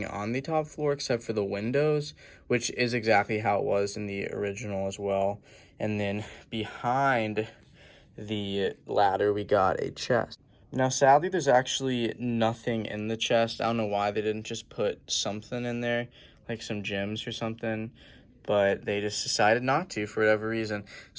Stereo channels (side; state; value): both; identical; correlation 1.00